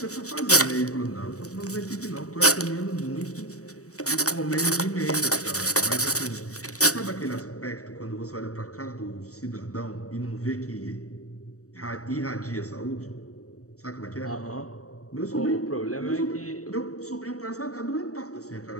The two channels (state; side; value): late; right; 0.65 ms